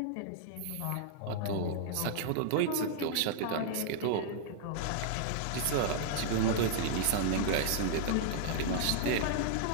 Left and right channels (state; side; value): different; both; correlation -0.01